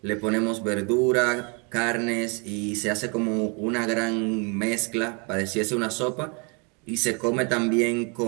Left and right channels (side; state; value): left; quieter; 33.8 dB